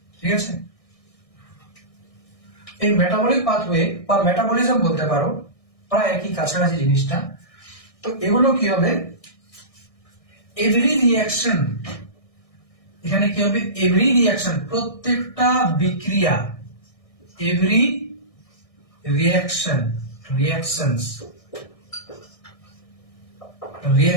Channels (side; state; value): right; late; 1.6 ms